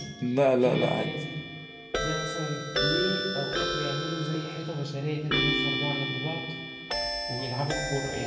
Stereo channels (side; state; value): both; identical; correlation 1.00